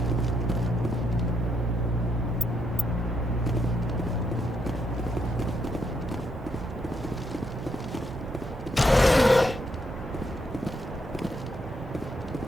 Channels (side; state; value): both; normal; correlation 0.77